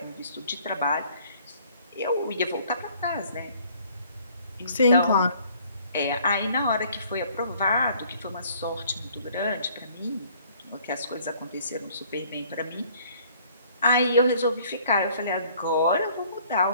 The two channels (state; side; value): inverted; both; correlation -0.58